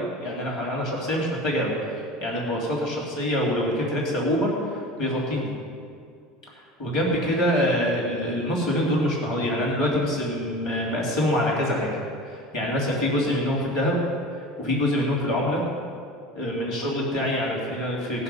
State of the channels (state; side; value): normal; both; correlation 0.36